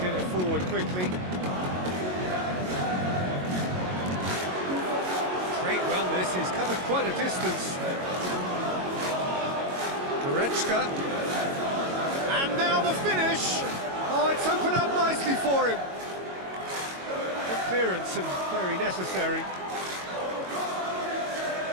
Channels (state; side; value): late; left; 22 ms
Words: get it forward quickly. Great run this, he's covered quite a distance. Goretzka. And now the finish! Oh, it's opened up nicely for him. Good clearance and very necessary.